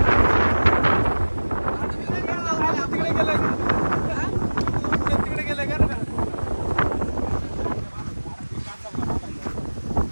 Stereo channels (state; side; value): inverted; both; correlation -1.00